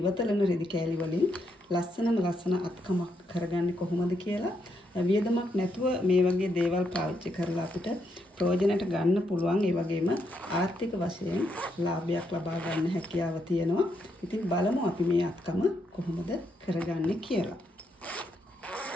රෙදි කෑලි වලින් ලස්සන අත්කමක් කරගන්නේ කොහොමද කියලා. වියදමක් නැතුව මේ වගේ දේවල් පාවිච්චි කරලා අපිට ප්‍රයෝජනට ගන්න පුළුවන්. ඒ වගේම ආර්ථික වශයෙන් ලාභයක් ලබා ගන්න හැකියාව තියෙනවා. ඉතින් බලමු අපි මේ අත්කම කොහොමද කරගන්නේ කියලා.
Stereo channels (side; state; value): both; normal; correlation 0.78